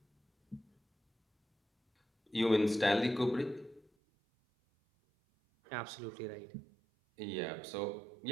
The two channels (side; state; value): left; drops out; at 3.9 s